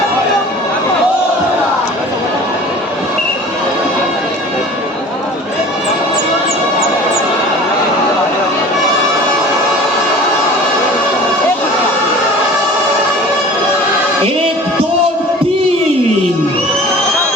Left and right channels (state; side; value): normal; both; correlation 0.43